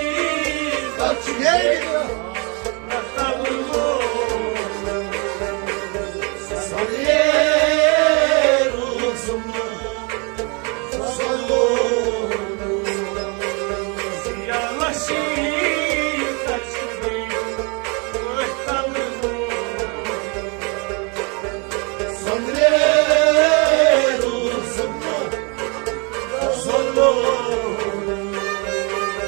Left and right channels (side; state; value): left; quieter; 32.6 dB